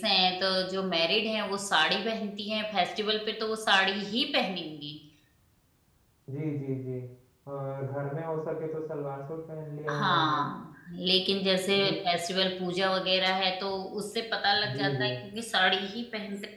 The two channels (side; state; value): both; identical; correlation 1.00